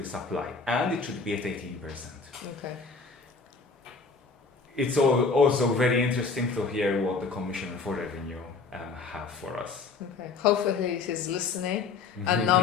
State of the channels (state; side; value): quieter; right; 4.6 dB